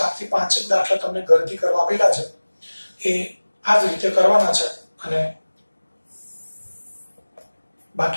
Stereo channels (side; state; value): both; inverted; correlation -1.00